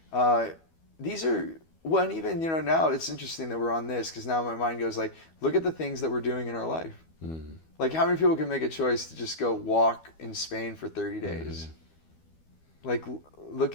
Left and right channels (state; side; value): late; right; 12 ms